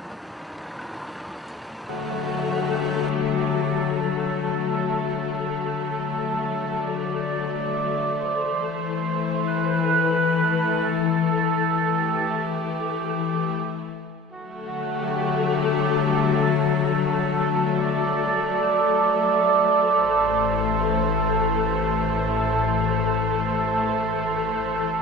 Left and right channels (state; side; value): normal; both; correlation 0.48